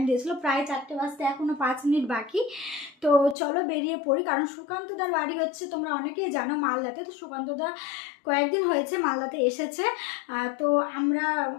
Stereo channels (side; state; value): right; drops out; at 3.4 s